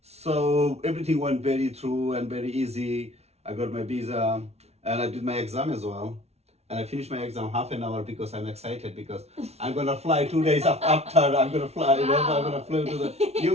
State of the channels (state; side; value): late; left; 0.31 ms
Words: So everything went very through and very easy. I got my visa and I did my exam as well. And I finished my exam half an hour because I'm excited because I'm gonna fly 2 days after. I'm gonna fly, you know, I'm gonna fly to the